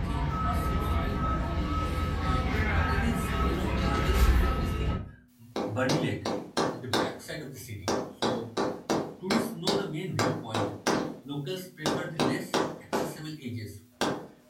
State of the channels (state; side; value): identical; both; correlation 1.00